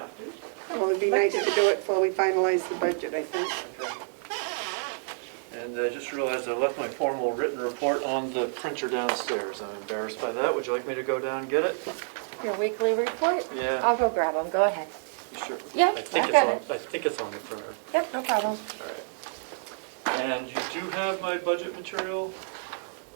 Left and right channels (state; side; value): silent; left; digital silence